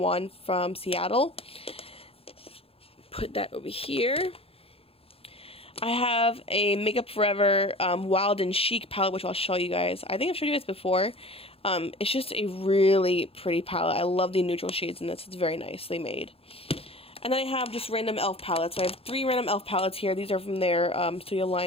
one from Seattle. Put that over here. I have a Makeup Forever Wild and Chic palette, which I'll show you guys. I think I've showed you guys before. It's just a really pretty palette. I love the neutral shades in this. It's very nicely made. And then I have just random e.l.f. palettes. So I have 3 random e.l.f. palettes here. These are from their studio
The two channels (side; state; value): right; late; 0.28 ms